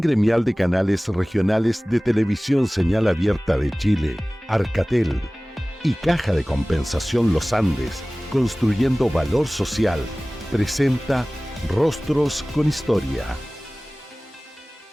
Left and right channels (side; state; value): both; normal; correlation 0.98